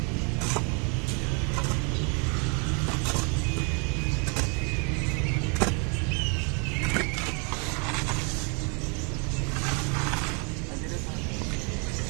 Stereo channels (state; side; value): quieter; left; 35.5 dB